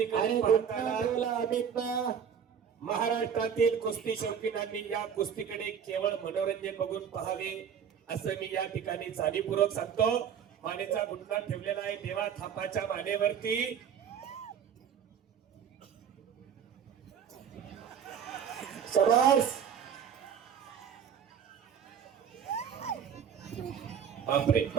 आणि पाहताना अमित महाराष्ट्रातील कुस्ती शौकीनांनी या कुस्तीकडे केवळ मनोरंजन बघून पाहावे असं मी या ठिकाणी जाणीवपूर्वक सांगतो। मानेचा गुटका ठेवलेला आहे देवा थापाच्या मानेवरती। शबास, बापरे,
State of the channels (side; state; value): left; quieter; 7.9 dB